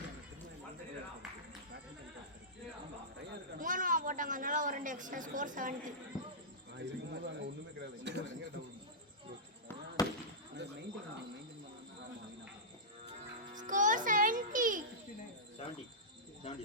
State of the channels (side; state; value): both; normal; correlation -0.15